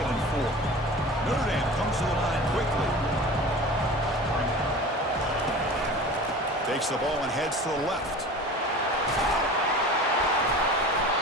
and 4. Notre Dame comes to the line quickly. Takes the ball and heads to the left.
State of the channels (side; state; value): both; normal; correlation 0.37